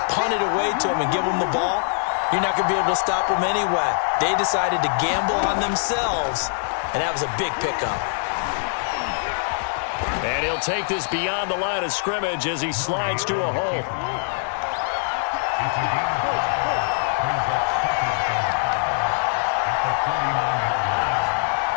punt it away to them and give them the ball, you're not going to be able to stop them anyway. They decided to gamble on themselves, and that was a big pickup. And he'll take this beyond the line of scrimmage as he slides to a hole.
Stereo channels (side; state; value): right; silent; digital silence